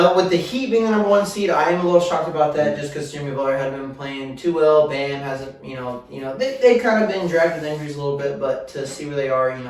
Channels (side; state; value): both; identical; correlation 1.00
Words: with the Heat being the number 1 seed, I am a little shocked about that just because Jimmy Butler hasn't been playing too well. Bam hasn't, they kind of been dragged with injuries a little bit, but to see where they are,